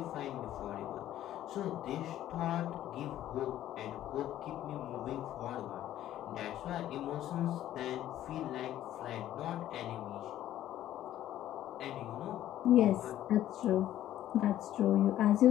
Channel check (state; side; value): quieter; right; 12.7 dB